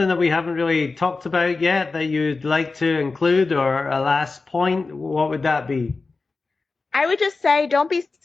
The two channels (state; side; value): quieter; right; 3.9 dB